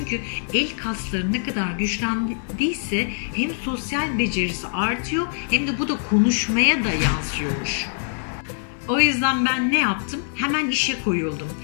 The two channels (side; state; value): right; silent; digital silence